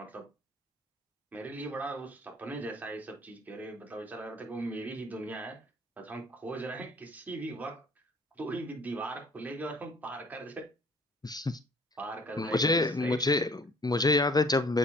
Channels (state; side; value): normal; both; correlation 0.54